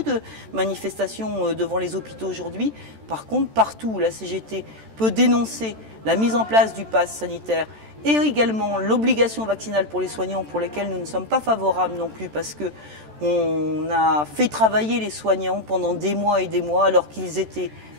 de manifestations devant les hôpitaux aujourd'hui. Par contre, partout où la CGT peut dénoncer la mise en place du pass sanitaire et également l'obligation vaccinale pour les soignants, pour lesquels nous ne sommes pas favorables non plus, parce que on a fait travailler les soignants pendant des mois et des mois alors qu'ils étaient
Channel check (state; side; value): late; left; 14 ms